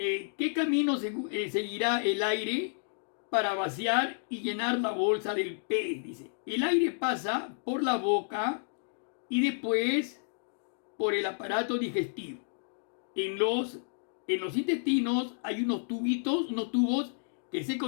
camino seguirá el aire para vaciar y llenar la bolsa del pez? Dice, el aire pasa por la boca y después por el aparato digestivo. En los intestinos hay unos tubos que se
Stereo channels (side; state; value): right; silent; digital silence